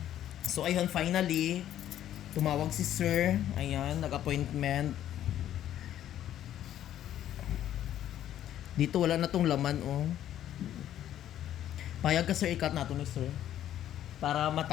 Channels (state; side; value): quieter; right; 11.6 dB